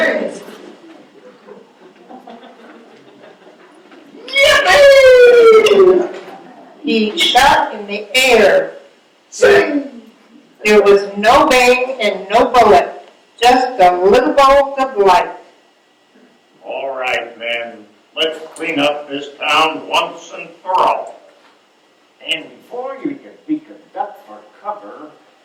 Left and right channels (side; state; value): both; identical; correlation 1.00